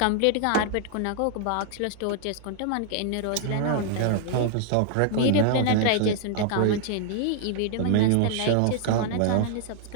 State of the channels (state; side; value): different; both; correlation 0.00